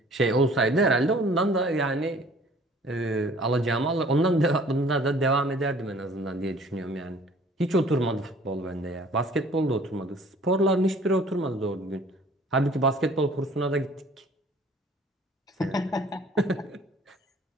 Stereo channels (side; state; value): both; normal; correlation 0.53